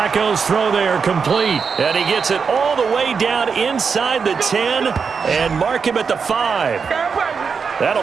throw there complete, and he gets it all the way down inside the 10 and mark him at the 5.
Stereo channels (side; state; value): left; quieter; 5.7 dB